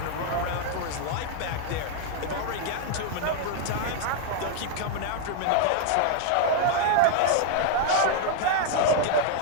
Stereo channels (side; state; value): both; different; correlation 0.00